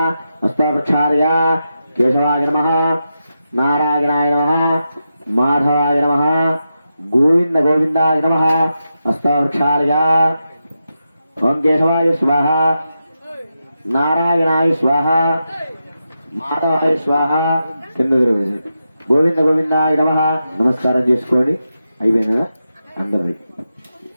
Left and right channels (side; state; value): both; inverted; correlation -0.88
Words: హస్తోపక్షార్య కేశవాయ నమః నారాయణాయ నమః మాధవాయ నమః గోవింద గోవిందాయ నమః హస్తోపక్షార్య ఓం కేశవాయ స్వాహ నారాయణాయ స్వాహ మాధవాయ స్వాహ కింద గోవింద గోవిందాయ నమః నమస్కారం చేసుకోండి. అయిపోయినగా అందరి